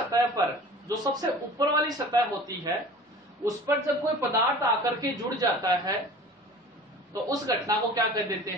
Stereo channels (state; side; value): normal; both; correlation 0.41